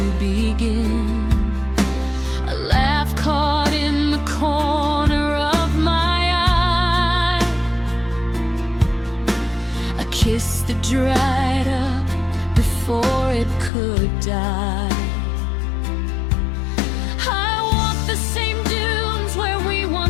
begin. A laugh caught in the corner of my eye, a kiss that dried up before it could die. I walk the same dunes where we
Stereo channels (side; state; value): right; drops out; at 13.7 s